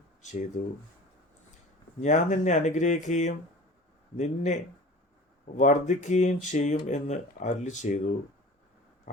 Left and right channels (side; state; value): both; normal; correlation 0.40